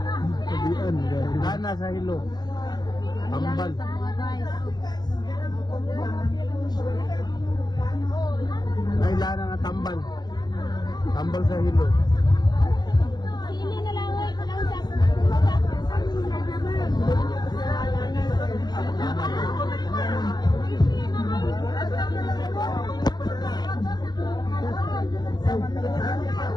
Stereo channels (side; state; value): right; late; 0.20 ms